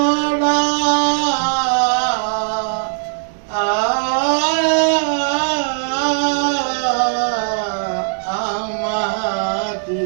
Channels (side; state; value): left; silent; 65 dB below the other